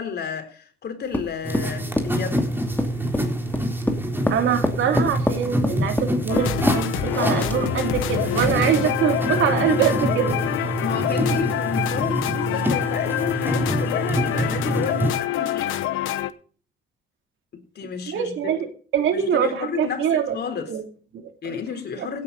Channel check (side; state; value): both; normal; correlation 0.37